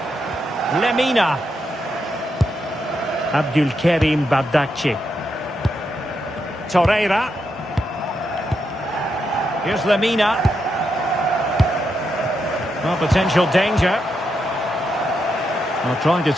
Lemina. Abdulkarim Bardakci. Torreira. Here's Lemina. Well, potential danger. Well, trying to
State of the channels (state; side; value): normal; both; correlation 0.83